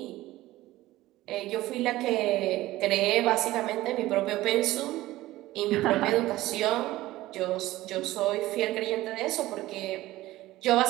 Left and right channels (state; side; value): quieter; left; 16.8 dB